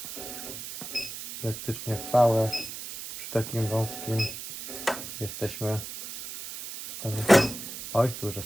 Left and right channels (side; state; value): right; noise; hiss, 9 dB below the sound